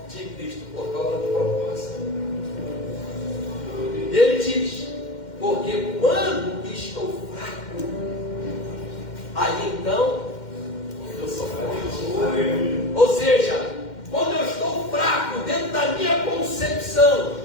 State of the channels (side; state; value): right; late; 2.1 ms